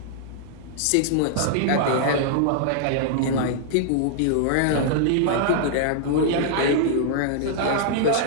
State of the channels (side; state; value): both; different; correlation -0.01